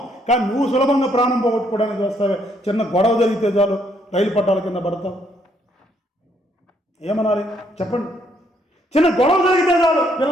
కానీ నువ్వు సులభంగా ప్రాణం పోగొట్టుకోవడానికి వస్తావే. చిన్న గొడవ జరిగితే చాలు రైలు పట్టాల కింద పడతావు. ఏమనాలి చెప్పండి? చిన్న గొడవ జరిగితే చాలు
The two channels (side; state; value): both; normal; correlation 0.70